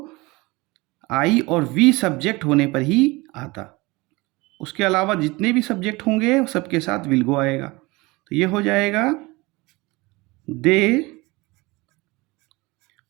आई और वी सब्जेक्ट होने पर ही आता। उसके अलावा जितने भी सब्जेक्ट होंगे सबके साथ विल गो आएगा। तो ये हो जाएगा they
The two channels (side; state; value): left; quieter; 23.3 dB